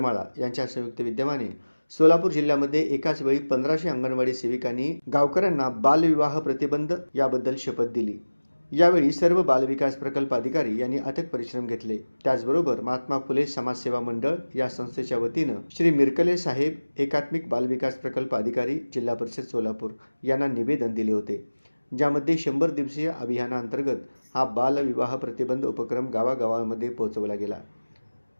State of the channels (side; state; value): both; inverted; correlation -1.00